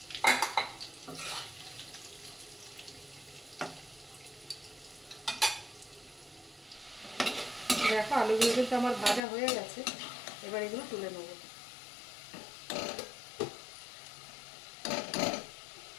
দেখো আলুগুলো কিন্তু আমার ভাজা হয়ে গেছে। এবার এগুলো তুলে নেব।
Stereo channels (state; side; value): drops out; right; at 9.2 s